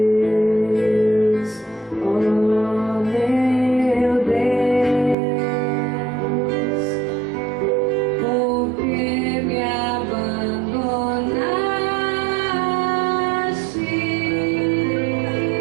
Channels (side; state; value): left; drops out; at 5.2 s